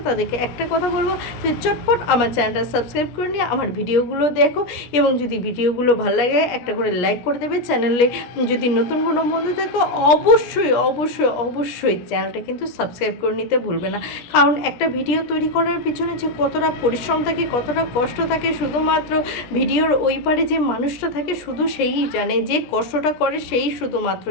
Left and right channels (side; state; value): right; late; 17 ms